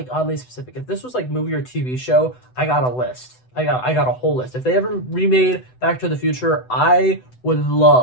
oddly specific. If this was like movie or TV show, I got a list. I got a whole list. If they ever remade Back to the Future, I would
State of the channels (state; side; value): late; right; 7.9 ms